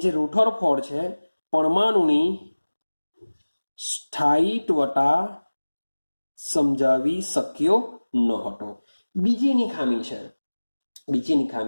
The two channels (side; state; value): both; inverted; correlation -1.00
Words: જે રુથરફોર્ડ છે પરમાણુની સ્થાયિત્વતા સમજાવી શક્યો ન હતો। બીજીની ખામી